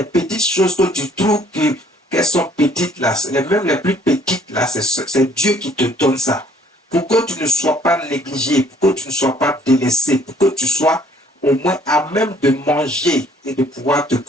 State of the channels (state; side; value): normal; both; correlation 0.61